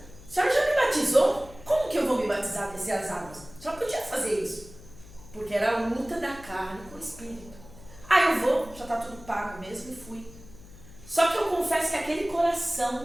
senhora já me batizou? Como que eu vou me batizar, descer as águas? A senhora podia fazer isso, porque era a luta da carne com o espírito. Ah, eu vou, já está tudo pago mesmo, e fui. Só que eu confesso que aquele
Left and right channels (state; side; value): noise; left; hum, 20 dB below the sound